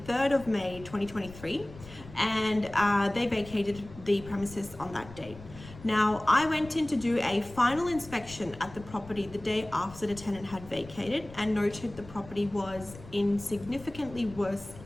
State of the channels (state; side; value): noise; left; rumble, 17 dB below the sound